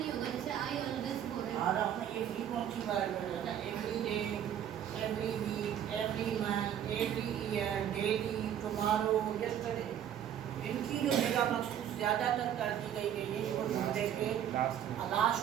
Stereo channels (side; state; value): left; quieter; 10.0 dB